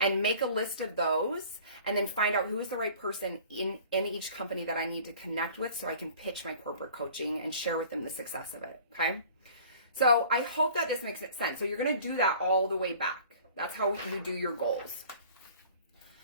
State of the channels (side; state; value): both; inverted; correlation -0.47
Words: make a list of those and then find out who is the right person in each company that I need to connect with so I can pitch my corporate coaching and share with them the success of it, okay? So I hope that this makes sense. So you're going to do that all the way back. That's how you do your goals.